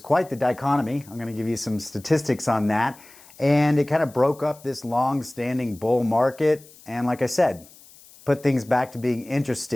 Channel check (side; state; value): left; noise; hiss, 23 dB below the sound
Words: the dichotomy. I'm going to give you some statistics on that. And it kind of broke up this long-standing bull market. And like I said, put things back to being